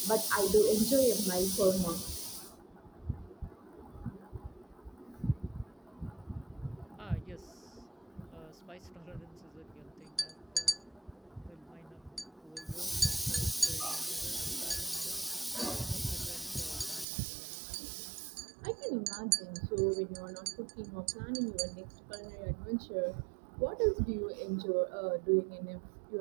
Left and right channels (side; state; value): left; drops out; at 17.1 s